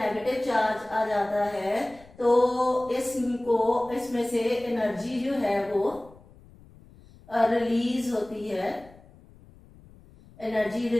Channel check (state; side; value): noise; left; rumble, 24 dB below the sound